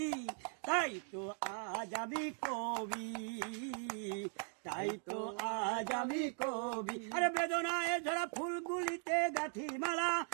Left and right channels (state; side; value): silent; left; 52 dB below the other